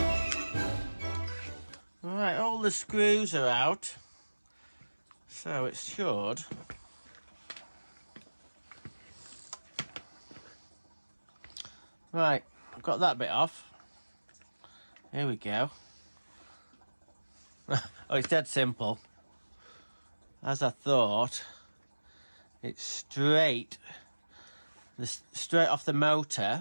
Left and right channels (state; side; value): inverted; both; correlation -1.00